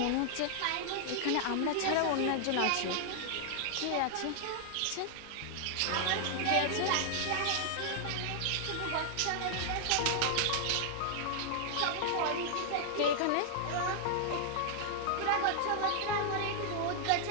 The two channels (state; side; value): different; both; correlation 0.00